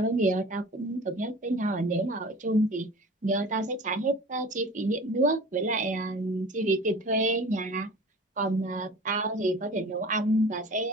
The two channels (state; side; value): normal; both; correlation 0.40